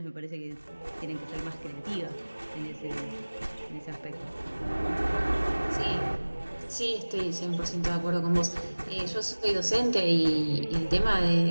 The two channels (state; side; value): inverted; both; correlation -1.00